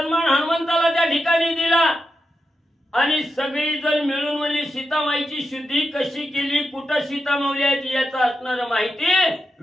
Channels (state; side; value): normal; both; correlation 0.88